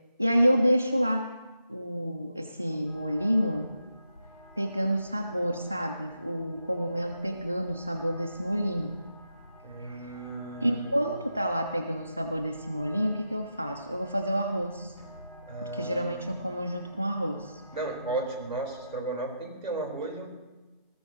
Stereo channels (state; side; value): inverted; both; correlation -0.84